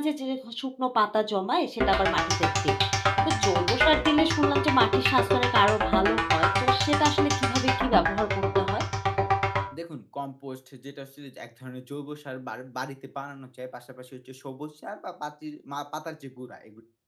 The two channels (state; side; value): identical; both; correlation 1.00